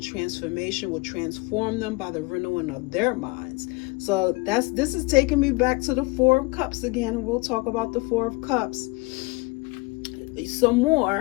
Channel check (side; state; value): right; quieter; 25.1 dB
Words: transformation will transform them by the renewing of their minds. So this is taking me back to the Four of Cups again, and we'll talk about the Four of Cups some